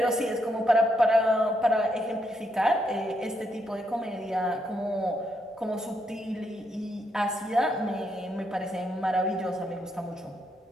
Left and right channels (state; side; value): normal; both; correlation 0.78